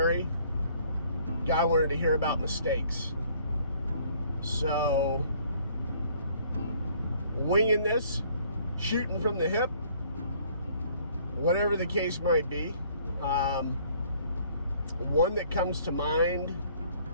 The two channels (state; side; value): inverted; both; correlation -0.60